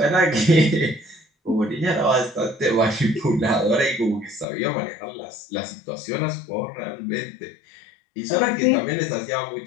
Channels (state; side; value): drops out; right; at 4.5 s